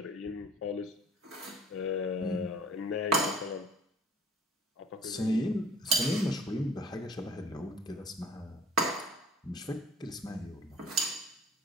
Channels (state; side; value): normal; both; correlation 0.50